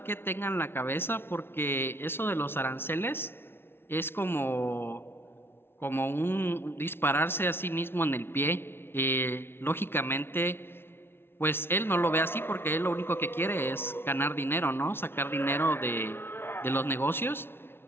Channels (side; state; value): right; late; 0.11 ms